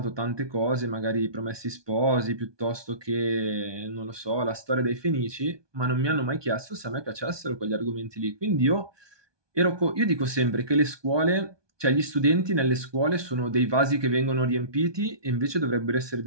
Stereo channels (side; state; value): left; late; 1.2 ms